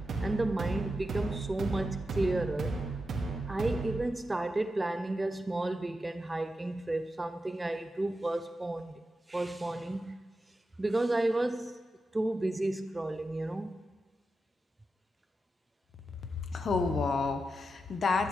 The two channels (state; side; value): normal; both; correlation 0.89